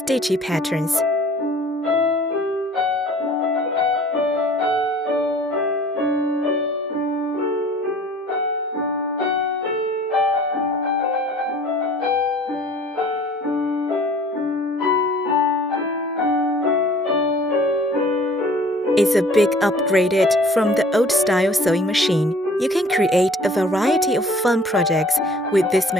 patterns. It's a big upgraded from the old-style sewing machine. You can create a variety of fun projects with this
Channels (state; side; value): normal; both; correlation 0.51